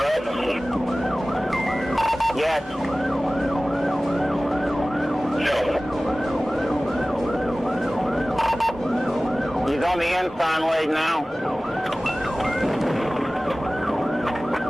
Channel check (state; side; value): normal; both; correlation 0.97